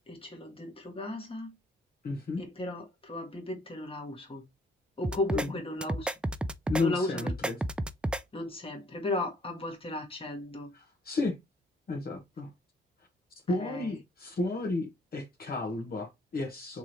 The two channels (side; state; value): both; normal; correlation 0.65